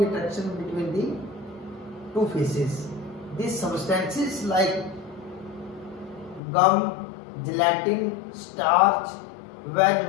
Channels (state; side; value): drops out; right; at 6.4 s